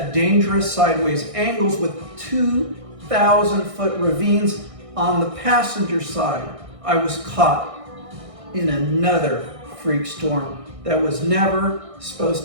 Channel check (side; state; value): left; late; 1.6 ms